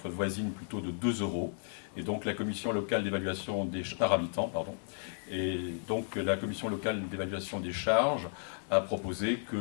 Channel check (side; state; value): right; silent; 55 dB below the other